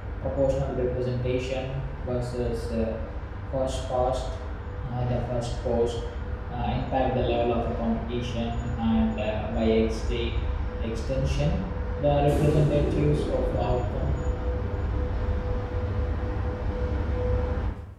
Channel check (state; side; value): identical; both; correlation 1.00